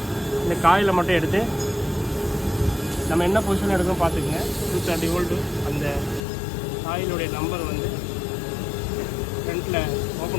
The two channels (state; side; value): drops out; right; at 6.2 s